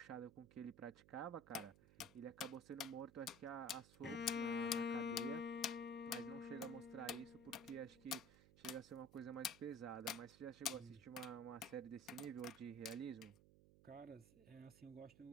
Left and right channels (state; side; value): noise; right; hum, 20 dB below the sound